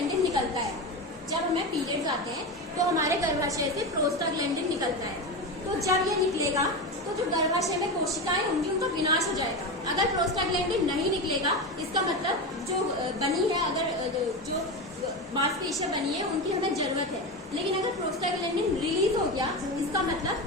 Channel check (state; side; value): normal; both; correlation 0.20